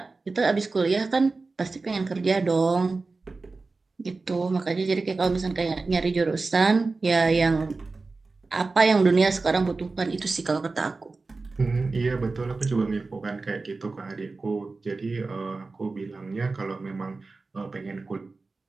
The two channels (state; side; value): quieter; left; 3.8 dB